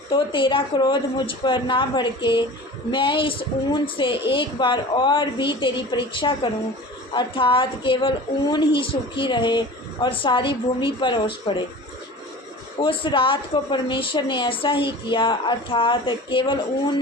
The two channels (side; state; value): both; normal; correlation 0.38